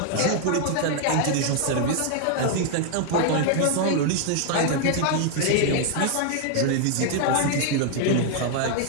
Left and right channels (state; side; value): different; both; correlation 0.00